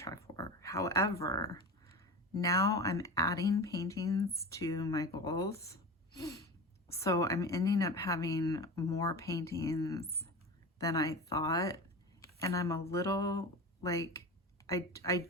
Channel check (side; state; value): both; normal; correlation 0.29